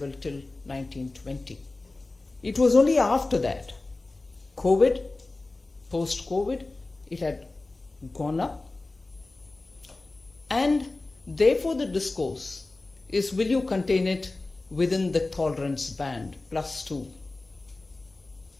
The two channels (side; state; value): right; quieter; 3.2 dB